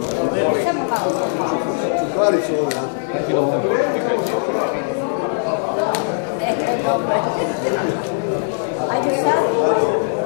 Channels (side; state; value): right; silent; digital silence